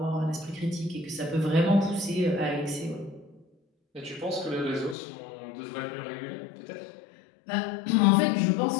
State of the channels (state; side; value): drops out; right; at 5.0 s